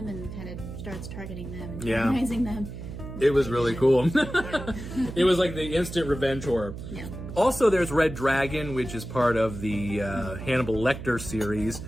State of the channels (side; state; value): right; noise; hum, 10 dB below the sound